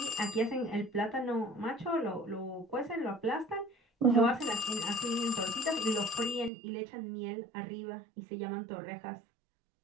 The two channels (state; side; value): drops out; left; at 6.5 s